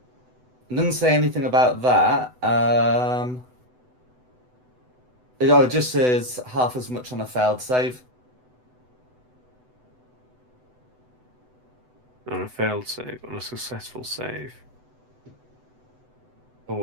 say anything about that. It just says half as much on a failed save. On a failed save, on a successful save.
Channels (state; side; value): late; left; 8.0 ms